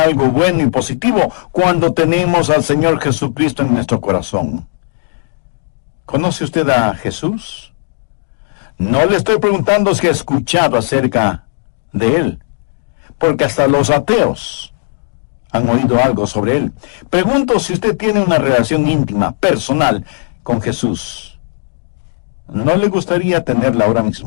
bueno y positivo cuando tenemos al Señor Jesucristo en nuestro corazón. ¿Conoce usted a Jesús? No le estoy preguntando si ha escuchado acerca de Él, porque hasta los ateos han oído algo sobre Él. Pregunto si usted tiene una relación íntima, personal, con Jesús. ¿No le gustaría tenerla ahora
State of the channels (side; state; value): right; silent; digital silence